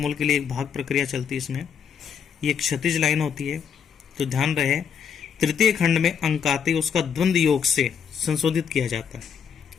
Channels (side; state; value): right; quieter; 7.3 dB